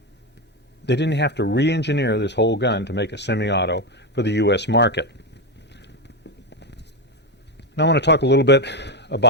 they didn't have to re-engineer this whole gun to make a semi-auto for the U.S. market. Now I want to talk a little bit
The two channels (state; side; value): normal; both; correlation 0.10